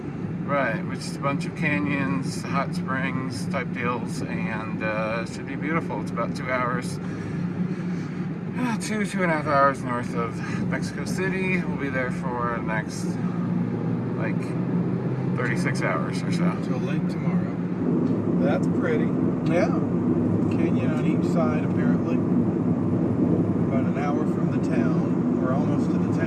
Right, which is a bunch of canyons, hot springs type deals, and it should be beautiful. It's about 2 hours. 2.5 hours north of Mexico City. We'll be there for the next, 36 hours or so. Till late tomorrow. That's pretty. Yeah. Canyon on each side, apparently. About an hour from the town. We're almost to the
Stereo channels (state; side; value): identical; both; correlation 1.00